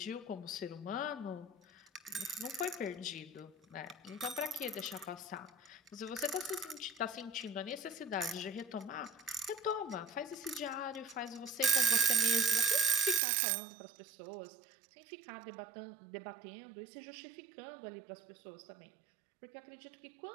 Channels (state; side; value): drops out; left; at 13.2 s